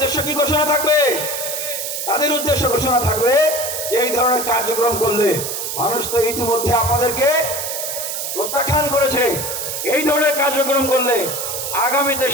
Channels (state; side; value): noise; right; hiss, 4 dB below the sound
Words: কি ঘোষণা থাকবে? তাদের উদ্দেশ্য ঘোষণা থাকবে যে এই ধরনের কার্যক্রম করলে, মানুষ তো ইতিমধ্যে আপনাদেরকে প্রত্যাখ্যান করেছে, এই ধরনের কার্যক্রম করলে আগামীতে